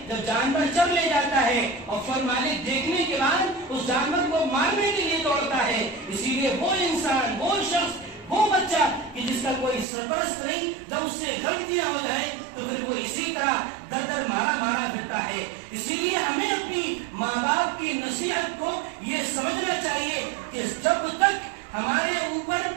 جب جانور چر لے جاتا ہے اور پھر مالک دیکھنے کے بعد اس جانور کو مارنے کے لیے دوڑتا ہے، اسی لیے وہ انسان، وہ شخص، وہ بچہ کہ جس کا کوئی سرپرست نہیں، جب اس سے غلطیاں ہو جائیں تو پھر وہ اسی طرح در در مارا پھرتا ہے۔ اسی لیے ہمیں اپنی ماں باپ کی نصیحت کو یہ سمجھنا چاہیے کہ جب تک ہمارے اوپر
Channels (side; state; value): left; drops out; at 9.9 s